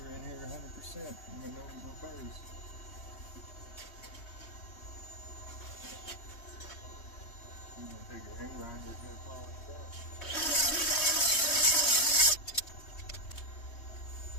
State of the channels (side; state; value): right; late; 3.2 ms